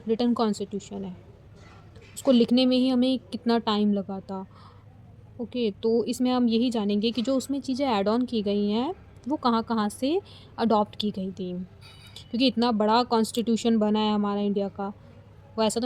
रिटन कॉन्स्टिट्यूशन है। उसको लिखने में ही हमें कितना टाइम लगा था। ओके, तो इसमें हम यही जानेंगे कि जो उसमें चीज़ें ऐड ऑन की गई हैं वो कहाँ-कहाँ से अडॉप्ट की गई थी। क्योंकि इतना बड़ा कॉन्स्टिट्यूशन बना है हमारा इंडिया का, वो ऐसा तो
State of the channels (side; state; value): both; identical; correlation 1.00